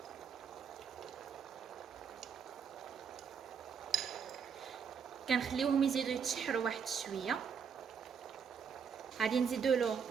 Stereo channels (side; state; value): left; quieter; 6.7 dB